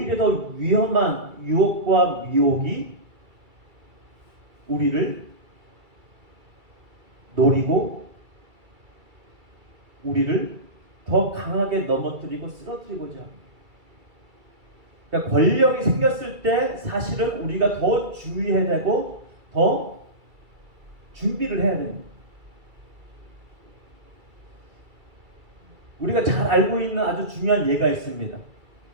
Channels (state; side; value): late; left; 2.3 ms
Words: 더 위험한 유혹과 미혹이 우리를 노리고 우리를 더 강하게 넘어뜨리고 쓰러뜨리고자 합니다. 그러니까 권력이 생겼을 때 사실은 우리가 더 주의해야 되고 더 준비를 해야 됩니다. 우리가 잘 알고 있는 아주 중요한 예가 있습니다.